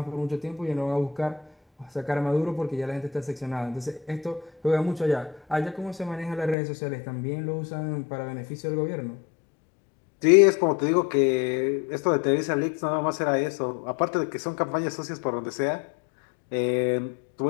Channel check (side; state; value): right; drops out; at 6.6 s